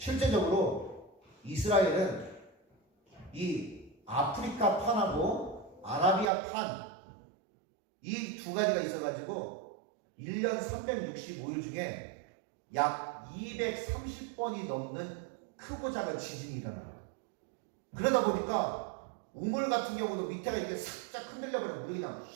이스라엘은 이 아프리카 판하고 아라비아 판 이 두 가지가 있어가지고 1년 365일 중에 약 230번이 넘는 크고 작은 지진이 일어나요. 그러다 보니까 우물 같은 경우도 밑에가 이렇게 살짝 흔들려버려 물이 그냥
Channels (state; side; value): drops out; left; at 6.3 s